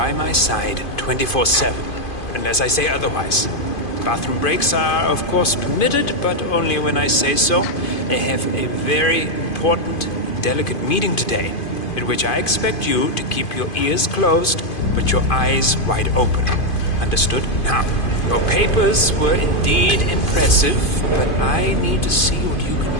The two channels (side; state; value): right; late; 2.5 ms